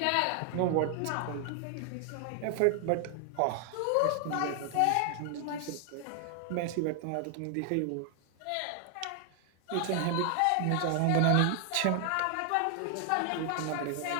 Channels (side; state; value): both; different; correlation 0.00